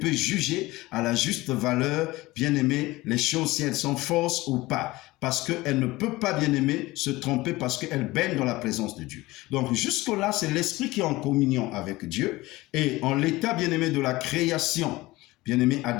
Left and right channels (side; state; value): right; quieter; 19.7 dB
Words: juger à la juste valeur, bien-aimé, les choses si elles sont fausses ou pas. Parce qu'elle ne peut pas, bien-aimé, se tromper parce qu'elle baigne dans la présence de Dieu. Donc jusque-là, c'est l'esprit qui est en communion avec Dieu. Et en l'état, bien-aimé, de la création, bien-aimé